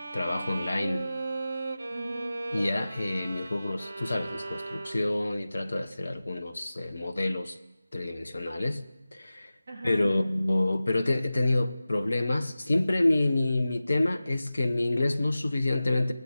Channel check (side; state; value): both; inverted; correlation -0.96